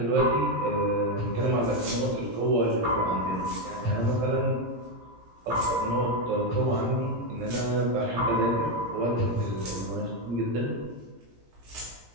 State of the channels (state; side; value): late; left; 17 ms